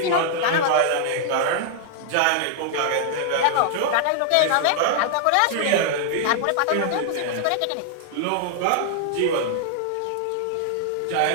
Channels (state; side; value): different; both; correlation 0.00